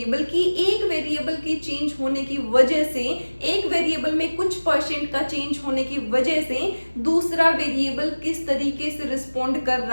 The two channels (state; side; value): inverted; both; correlation -1.00